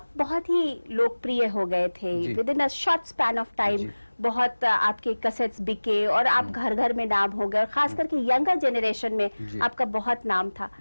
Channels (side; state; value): both; inverted; correlation -1.00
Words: बहुत ही लोकप्रिय हो गए थे with in a short span of time. बहुत आपके कैसेट्स बिके और आप घर घर में नाम हो गए और खास करके यंगर जनरेशन में आपका बहुत नाम था।